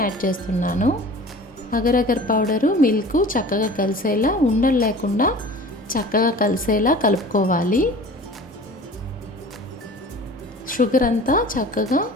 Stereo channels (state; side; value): normal; both; correlation 0.42